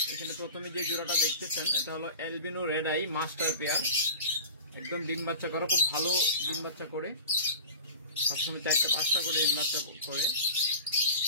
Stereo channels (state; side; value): inverted; both; correlation -0.36